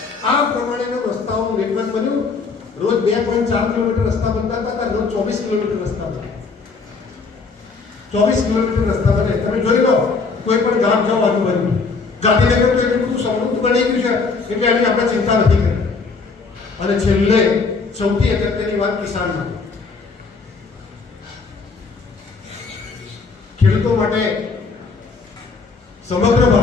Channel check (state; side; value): quieter; right; 4.5 dB